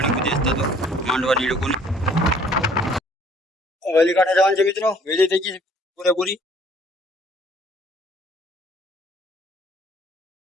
બધી તો માંડવાની લોકોની વેલી કાંઠે જવાનું છે મિત્રો વેલી થઈ ગઈ પૂરેપૂરી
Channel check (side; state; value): both; normal; correlation 0.57